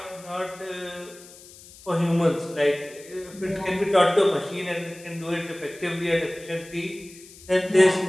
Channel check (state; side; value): noise; left; hiss, 20 dB below the sound